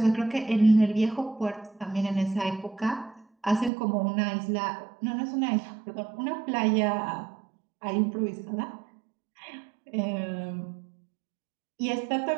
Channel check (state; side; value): drops out; left; at 3.7 s